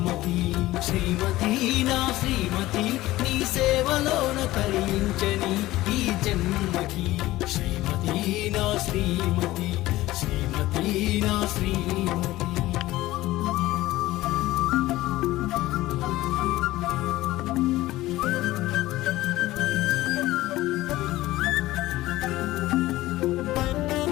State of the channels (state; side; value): quieter; right; 17.0 dB